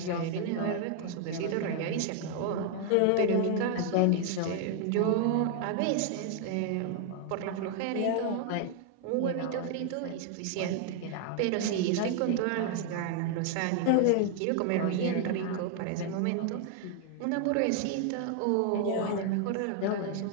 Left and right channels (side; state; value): both; different; correlation 0.00